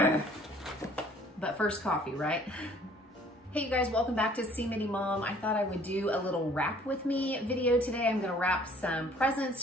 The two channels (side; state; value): both; normal; correlation 0.56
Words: But first coffee, right? Hey you guys, welcome back to See Mini Mom. I thought I would do a little wrap with me video today. I'm gonna wrap some presents,